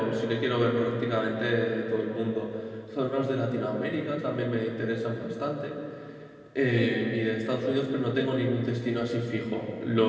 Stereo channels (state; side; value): identical; both; correlation 1.00